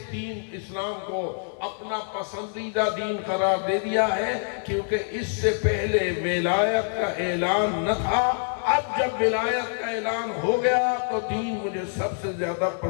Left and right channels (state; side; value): silent; right; 59 dB below the other